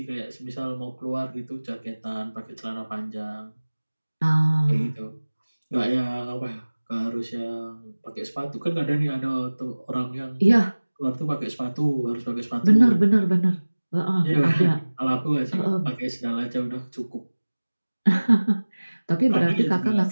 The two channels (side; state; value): both; inverted; correlation -1.00